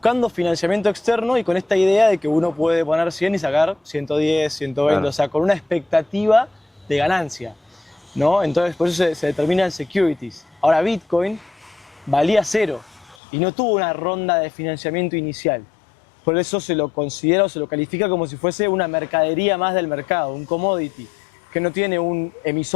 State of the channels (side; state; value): right; drops out; at 13.2 s